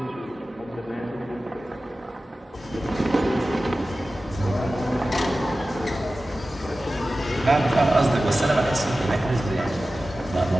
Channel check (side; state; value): both; normal; correlation 0.95